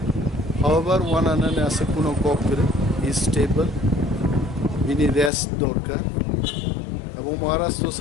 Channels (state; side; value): drops out; right; at 5.3 s